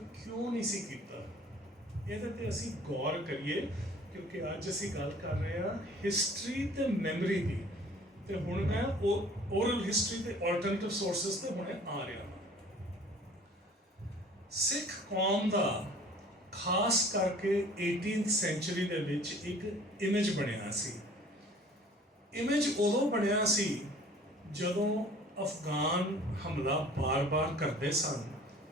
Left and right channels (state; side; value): normal; both; correlation 0.50